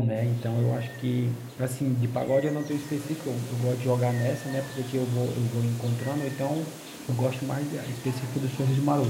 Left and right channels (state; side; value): identical; both; correlation 1.00